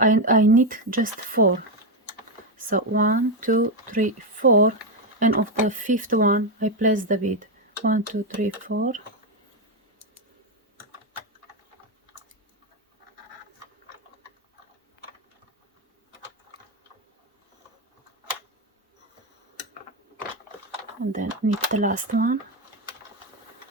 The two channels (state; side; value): normal; both; correlation 0.07